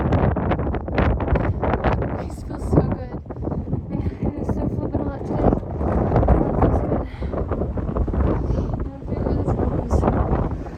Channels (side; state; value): both; identical; correlation 1.00